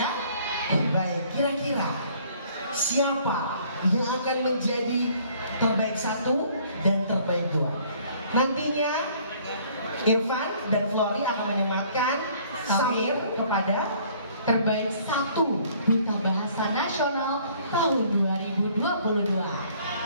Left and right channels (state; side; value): inverted; both; correlation -0.58